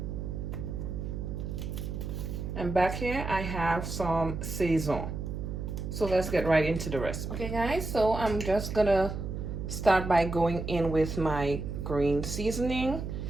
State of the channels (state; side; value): noise; right; hum, 5 dB below the sound